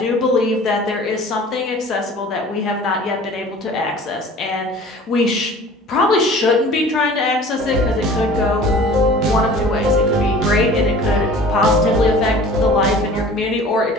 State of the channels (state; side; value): normal; both; correlation 0.45